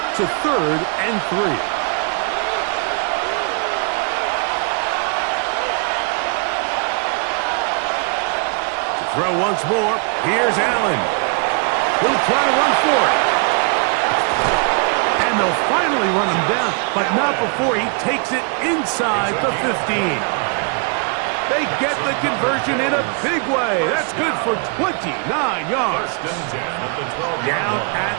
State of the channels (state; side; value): quieter; left; 38.3 dB